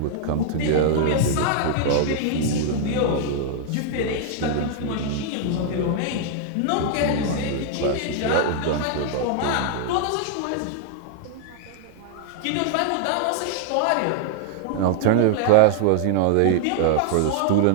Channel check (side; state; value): both; different; correlation -0.01